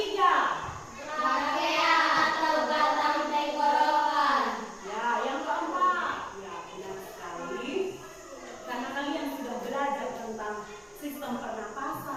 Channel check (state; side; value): identical; both; correlation 1.00